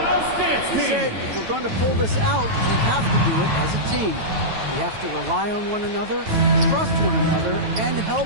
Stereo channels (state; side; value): late; left; 9.1 ms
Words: He said, if we're going to pull this out, we have to do it as a team. We have to rely on one another, trust one another, and